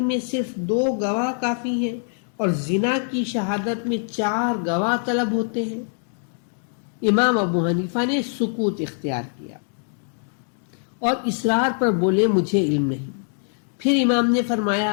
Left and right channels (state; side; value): silent; right; 59 dB below the other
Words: میں صرف 2 گواہ کافی ہیں اور زنا کی شہادت میں 4 گواہ طلب ہوتے ہیں؟ امام ابو حنیفہ نے سکوت اختیار کیا اور اصرار پر بولے مجھے علم نہیں۔ پھر امام نے